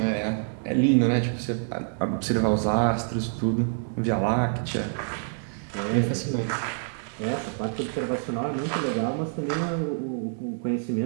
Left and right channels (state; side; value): silent; left; 60 dB below the other